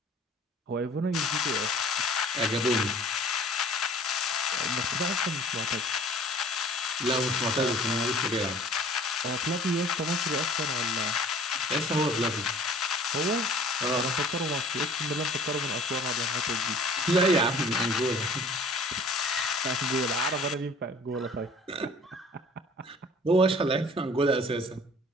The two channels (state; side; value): normal; both; correlation 0.49